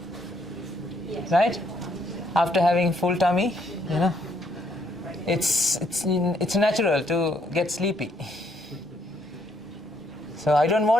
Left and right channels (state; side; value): normal; both; correlation 0.71